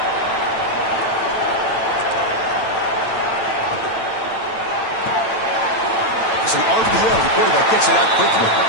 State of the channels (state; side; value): late; right; 9.0 ms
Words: It's an RPO. The quarterback gets it out quickly.